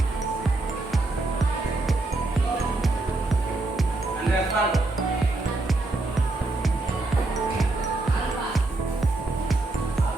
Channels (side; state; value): left; quieter; 3.1 dB